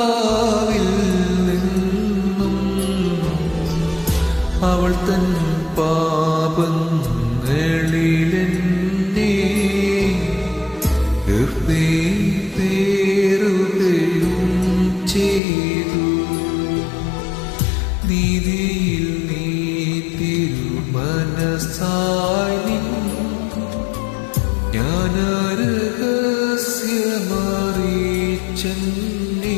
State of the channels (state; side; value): drops out; right; at 15.4 s